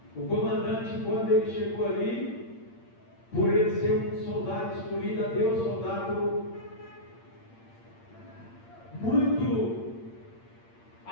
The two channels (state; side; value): late; right; 8.7 ms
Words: o comandante, quando ele chegou ali, por ele ser um soldado escolhido a Deus, soldado muito